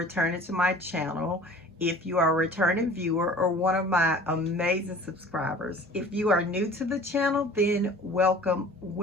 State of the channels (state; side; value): normal; both; correlation 0.45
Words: to my channel. If you are a returning viewer or one of my amazing subscribers, if you are new to the channel, then welcome,